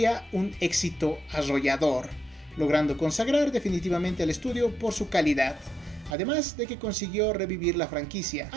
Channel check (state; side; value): drops out; left; at 6.2 s